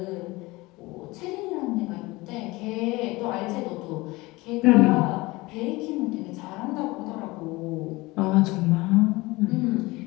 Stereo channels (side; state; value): right; quieter; 21.8 dB